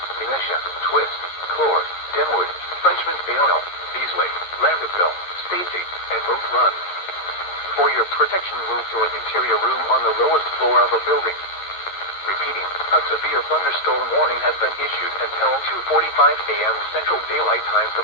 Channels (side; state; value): right; late; 11 ms